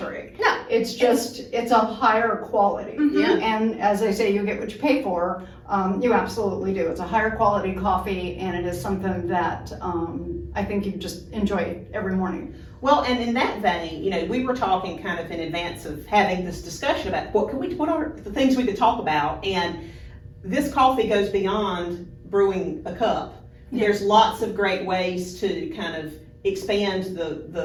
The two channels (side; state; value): both; identical; correlation 1.00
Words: No. It's just, it's a higher quality. Yeah. And as they say, you get what you pay for. You absolutely do. It's a higher quality coffee, and it is something that I think you just enjoy every morning. Well, and in that vein, you know, we were talking kind of in advance of having this discussion about what are the things we could talk about, and this coffee goes beyond brewing a cup. Yeah. There's lots of great ways to kind of expand